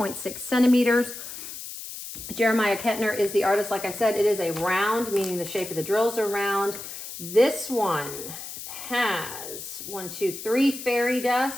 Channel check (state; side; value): noise; left; hiss, 10 dB below the sound